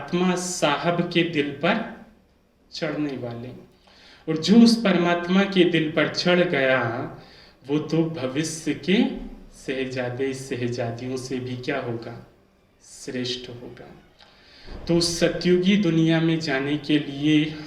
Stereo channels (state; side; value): identical; both; correlation 1.00